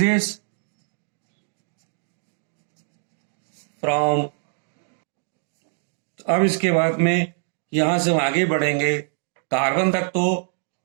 फ्रॉम। अब इसके बाद में यहां से हम आगे बढ़ेंगे कार्बन तक, तो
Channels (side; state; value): left; silent; digital silence